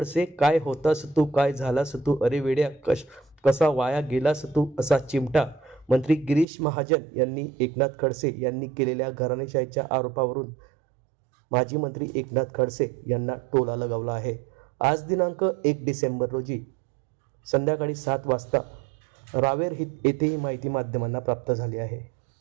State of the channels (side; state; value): left; drops out; at 6.5 s